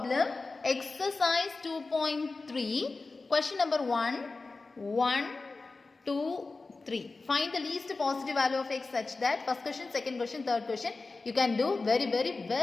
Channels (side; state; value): right; quieter; 3.8 dB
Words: exercise 2.3, question number 1, 1, 2, 3. Find the least positive value of x such that first question, second question, third question you can do